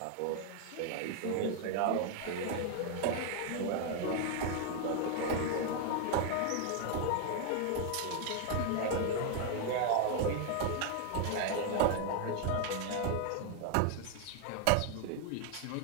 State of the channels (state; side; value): different; both; correlation 0.00